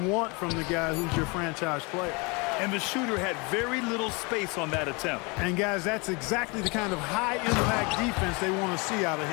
want from the guy who's your franchise player. And the shooter had very little space on that attempt. And guys, that's exactly the kind of high-impact defense they want to see out of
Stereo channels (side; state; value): right; quieter; 28.8 dB